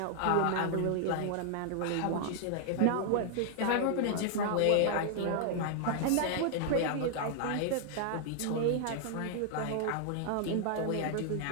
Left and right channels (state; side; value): different; both; correlation 0.00